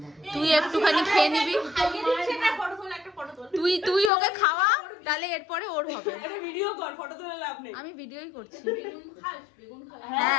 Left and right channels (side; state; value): right; drops out; at 4.1 s